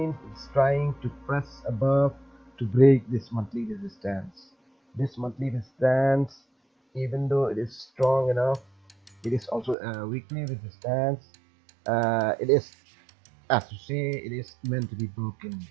it's trying to press above to break this monthly resistance. This monthly resistance, even though it is strong enough, it is also a weekly resistance. It is, as to say, it is meant to be broken.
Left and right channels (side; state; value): left; drops out; at 9.8 s